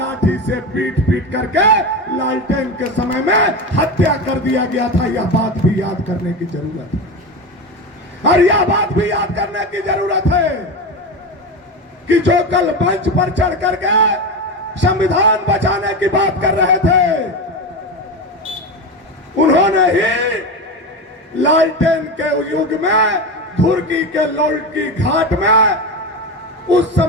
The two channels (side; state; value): both; normal; correlation 0.20